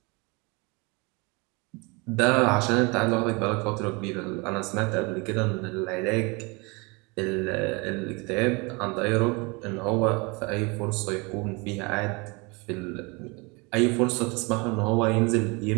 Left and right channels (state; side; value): quieter; left; 28.3 dB